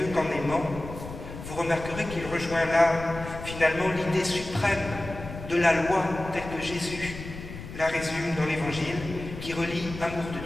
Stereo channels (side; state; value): left; noise; rumble, 11 dB below the sound